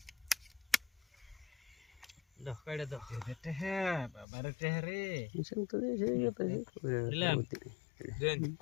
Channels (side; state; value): right; drops out; at 4.2 s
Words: দাও কাইড়া দাও হ্যাঁ বাবারে টেহরে দিলাম দেন